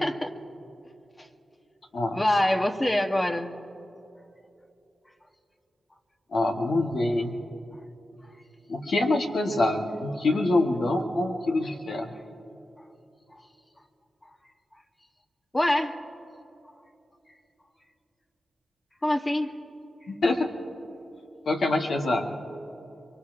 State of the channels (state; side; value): normal; both; correlation 0.92